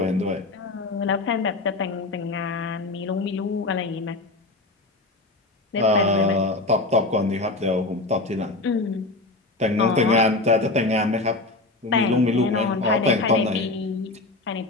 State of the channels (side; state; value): right; quieter; 3.1 dB